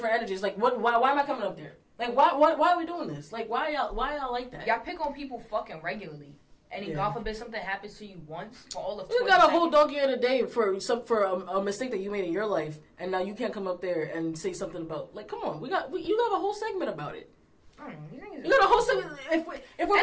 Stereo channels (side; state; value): both; identical; correlation 1.00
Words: energy. It's like, why am I coming up there? Like, why are we doing this? Like, why y'all like that? Y'all pick on people fucking regularly. And then, God forbid, something happens to you once for all of 20 You got a whole donkey of the day for a mistake that you made in your life, and now you can't come up there and say something about, like, come on, you got a whole segment about it. I don't know. You got a whole segment. If we're